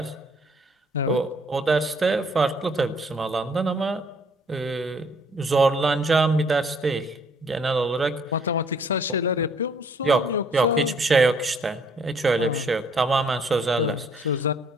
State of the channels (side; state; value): both; normal; correlation 0.62